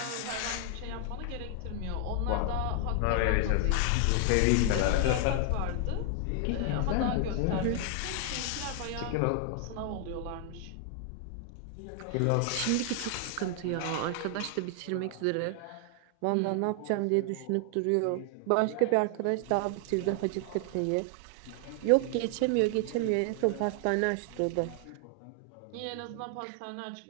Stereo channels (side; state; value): both; different; correlation 0.00